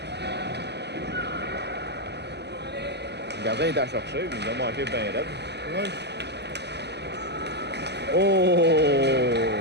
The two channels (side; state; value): left; late; 0.50 ms